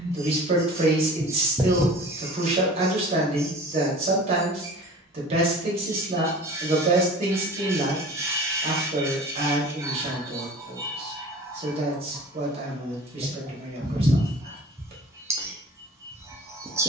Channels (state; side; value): normal; both; correlation 0.41